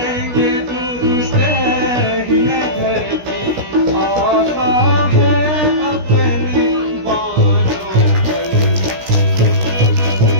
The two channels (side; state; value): left; late; 16 ms